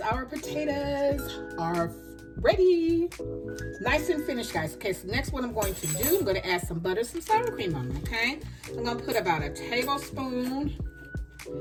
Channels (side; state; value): both; identical; correlation 1.00